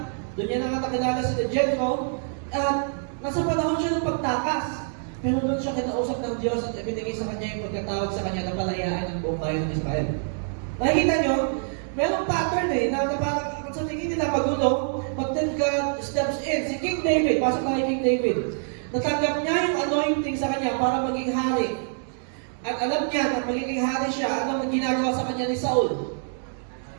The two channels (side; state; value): left; silent; digital silence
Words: Doon niya nakakilala si Jethro. At nasa panahon siya ng pagtakas. Pero doon siya kinausap ng Diyos at ibinigay sa kanya yung pagkatawag sa kanya na palayaan ng buong bayan ng Israel. Nakikita nyo? Merong pattern na parang sa tingin nila magulo, but then God steps in. Si King David, pasok na kay King David. Natanggap niya yung anointing sa kanya para maging hari. At alam niya na magiging hari siya, ano ang ginagawa sa kanya ni Saul?